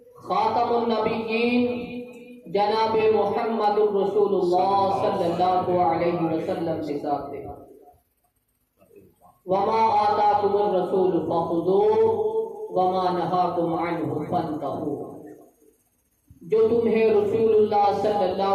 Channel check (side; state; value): both; identical; correlation 1.00